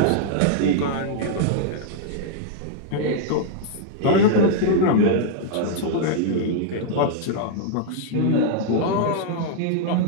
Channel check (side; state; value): both; different; correlation -0.01